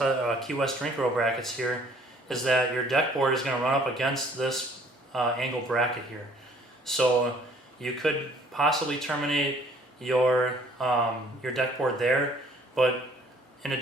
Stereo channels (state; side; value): normal; both; correlation 0.58